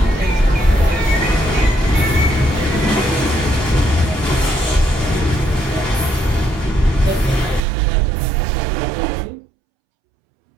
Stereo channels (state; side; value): drops out; left; at 7.7 s